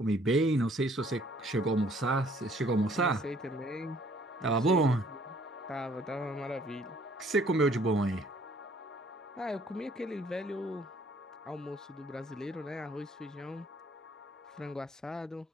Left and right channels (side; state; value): both; normal; correlation 0.60